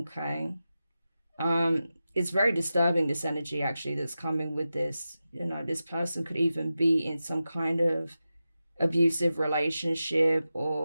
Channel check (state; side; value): inverted; both; correlation -0.92